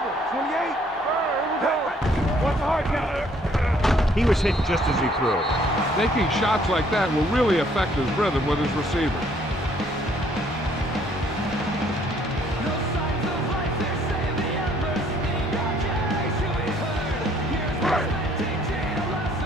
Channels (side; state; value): both; normal; correlation 0.63